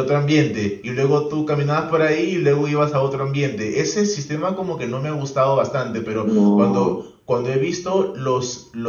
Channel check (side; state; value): both; identical; correlation 1.00